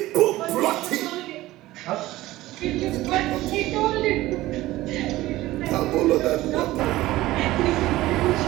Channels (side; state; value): left; quieter; 17.0 dB